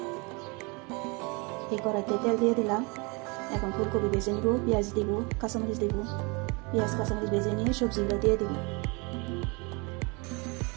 এই কড়াইতে তেল দিয়ে দিলাম। এখন ফুলকপি ভেজে নিব, পেঁয়াজ দিব, কাঁচামরিচ দিব। পেঁয়াজ কাঁচামরিচ ভেজে নিয়ে সবজিগুলো দিয়ে দিব।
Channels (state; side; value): quieter; left; 29.5 dB